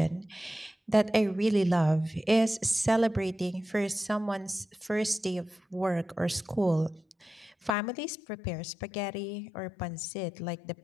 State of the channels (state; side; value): drops out; right; at 7.7 s